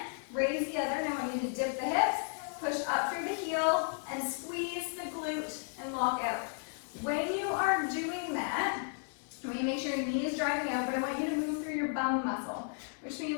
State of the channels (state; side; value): silent; right; 55 dB below the other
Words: raise the other. Now I want you to dip the hips, push up through the heel, and squeeze the glute and lock out. When you are doing that, I want you to make sure your knee is driving out, but I want you to move through your bum muscle, which